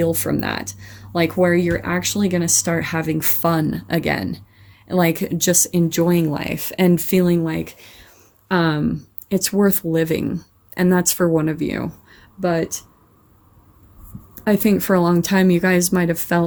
from that. Like where you're actually going to start having fun again, like just enjoying life and feeling like it's worth living. And that's for one of you. But I think for a long time, you guys might have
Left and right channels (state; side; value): identical; both; correlation 1.00